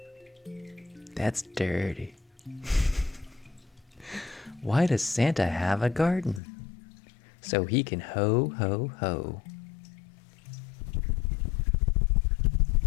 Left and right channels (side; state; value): right; drops out; at 6.4 s